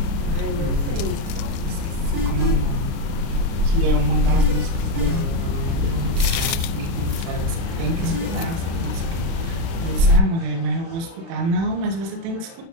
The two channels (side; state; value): left; late; 36 ms